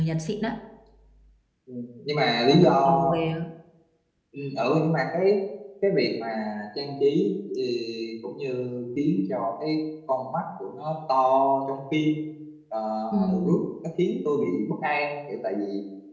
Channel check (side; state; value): both; identical; correlation 1.00